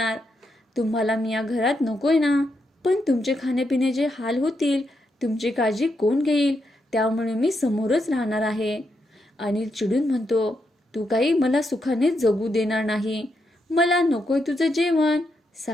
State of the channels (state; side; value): normal; both; correlation 0.82